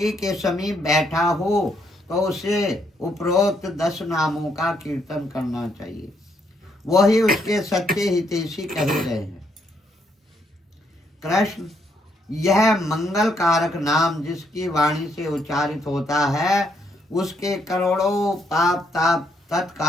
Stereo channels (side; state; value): both; normal; correlation 0.74